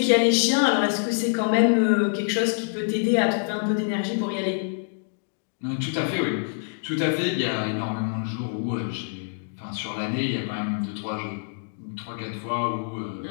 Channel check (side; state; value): right; silent; digital silence